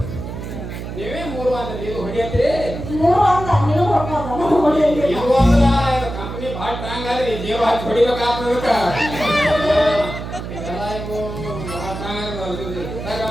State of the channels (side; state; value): right; noise; hum, 8 dB below the sound